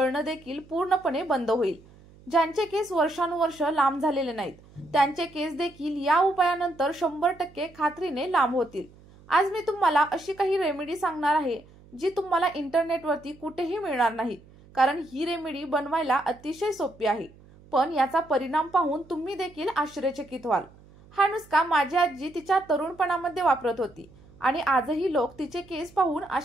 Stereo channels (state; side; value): noise; right; hum, 24 dB below the sound